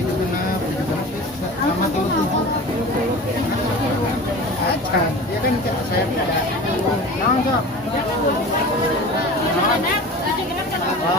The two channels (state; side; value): normal; both; correlation 0.36